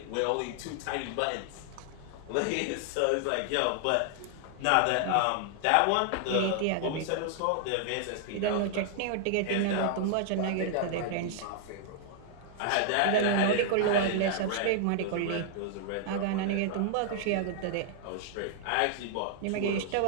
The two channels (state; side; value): different; both; correlation 0.00